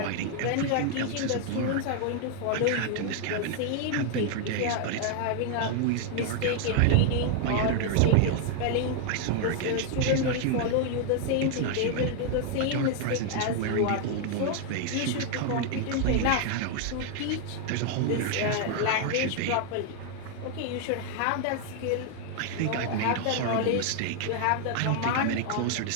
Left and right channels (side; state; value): both; different; correlation 0.00